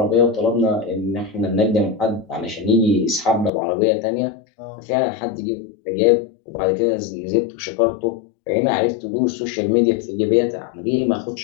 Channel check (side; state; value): right; drops out; at 3.5 s